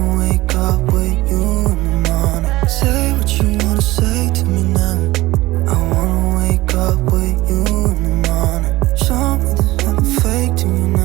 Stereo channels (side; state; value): left; quieter; 18.7 dB